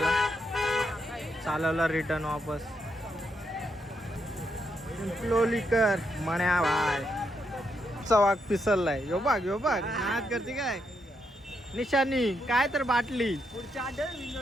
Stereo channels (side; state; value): both; normal; correlation 0.80